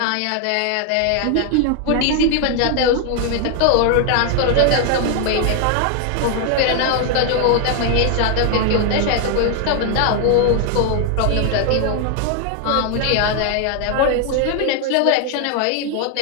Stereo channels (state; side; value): different; both; correlation 0.00